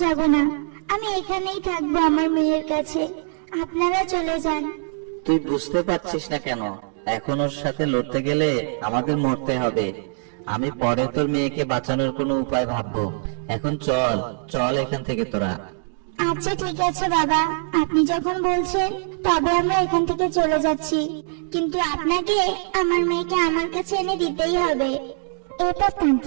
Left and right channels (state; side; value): silent; left; digital silence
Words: যাব না। আমি এখানেই থাকবো আমার মেয়ের কাছে। আপনারা চলে যান। তুই বুঝতে পারছিস না কেন? এখন ওর সাথে লড়তে গেলে আমাদের মরতে হবে। আমি পরে তোর মেয়েকে বাঁচানোর কোনো উপায় ভাববো। এখন চল চল এখান থেকে তোরা। আচ্ছা ঠিক আছে বাবা, আপনি যখন বলছেন তবে আমরা এখান থেকে চলে যাচ্ছি, কিন্তু আপনাকে আমার মেয়েকে আমার কাছে এনে দিতেই হবে। এরপর